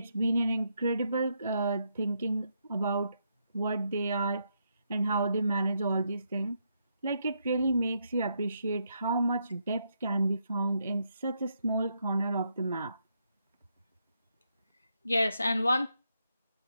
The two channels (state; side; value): inverted; both; correlation -0.79